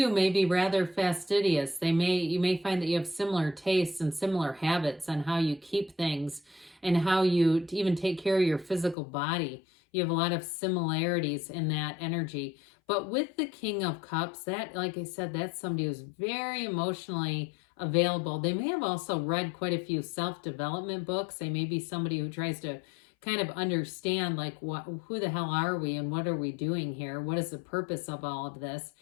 may be rather fastidious. You may find that you have similar tastes and similar habits on how you keep things and how you even take care of your physical body. You have a lot of similarities in that energy. But with the King of Cups, that, like I said, that's somebody who's very emotionally available. They may have also read quite a few self-development books. They may be somebody who tries to kind of understand like who the hell are we and what are we doing here? What is the purpose of all of this?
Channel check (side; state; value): right; drops out; at 9.0 s